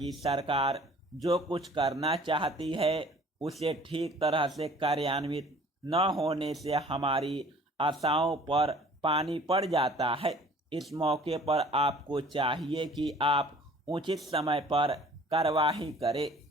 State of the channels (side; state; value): both; normal; correlation 0.51